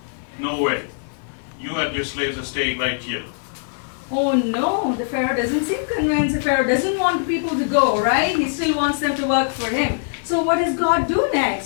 No way. You and your slaves are staying right here. Oh no, the Pharaoh doesn't seem convinced. The Pharaoh doesn't want people to go, right? He still wants them to work for him. So what does God do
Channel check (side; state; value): right; silent; 60 dB below the other